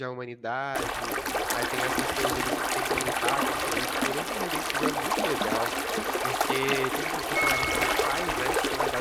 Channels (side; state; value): both; identical; correlation 1.00